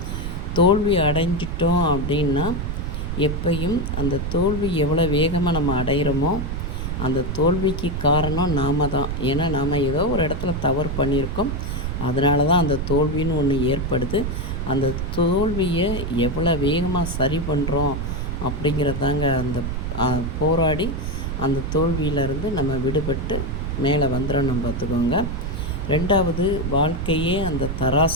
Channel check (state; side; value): noise; right; rumble, 3 dB below the sound